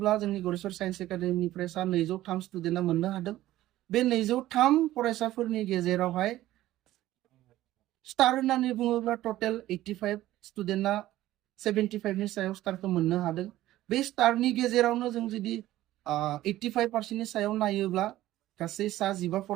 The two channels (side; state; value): left; quieter; 15.0 dB